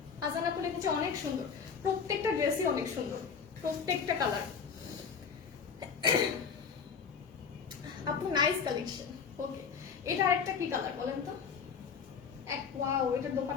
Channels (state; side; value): quieter; right; 6.3 dB